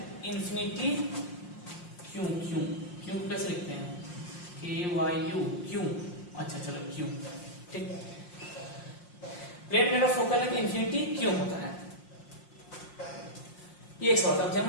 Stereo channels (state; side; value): late; right; 5.6 ms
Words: इंफिनिटी क्यों कैसे लिखते हैं, KYU क्यों, अच्छा चलो क्यों, ठीक। प्लेन मिरर का फोकल लेंथ इंफिनिटी क्यों होता है, ये एक सवाल था,